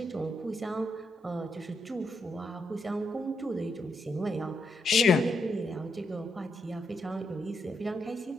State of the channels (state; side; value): normal; both; correlation 0.80